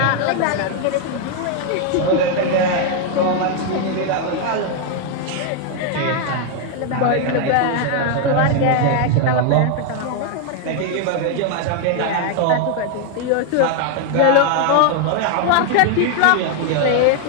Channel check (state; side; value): different; both; correlation 0.00